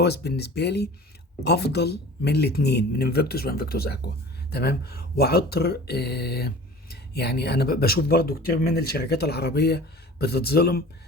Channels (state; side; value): normal; both; correlation 0.41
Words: بالنسبة لي أفضل من الاتنين، من انفيكتوس وانفيكتوس أكوا. تمام. وعطر يعني أنا بشوف برضو كتير من الشركات العربية بتتظلم